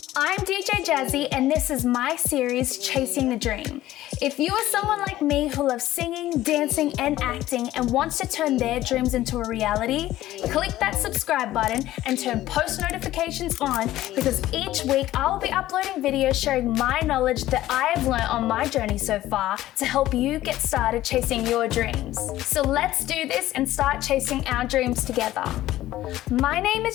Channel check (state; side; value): quieter; right; 14.8 dB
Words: I'm DJ Jazzy, and this is my series, Chasing the Dream. If you are someone like me who loves singing, dancing, and acting and wants to turn their dreams into a reality, click that subscribe button and turn post notifications on, because each week I will be uploading videos sharing my knowledge that I have learned on my journey so far to help you get started chasing your dreams. So let's do this and start chasing our dreams together. My name